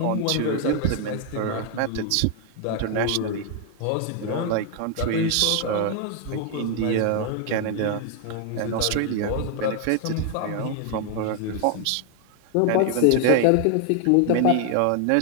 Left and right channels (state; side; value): different; both; correlation 0.00